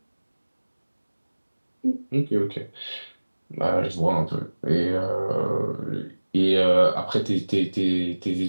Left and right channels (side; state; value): both; inverted; correlation -1.00